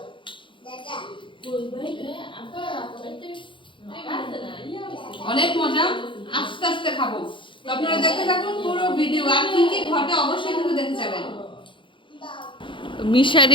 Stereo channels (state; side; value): late; right; 0.24 ms